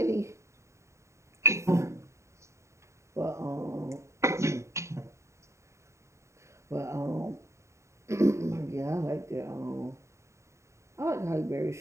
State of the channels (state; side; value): late; left; 0.14 ms